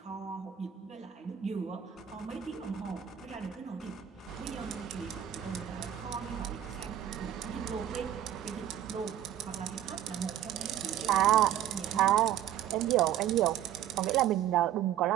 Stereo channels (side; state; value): left; quieter; 11.0 dB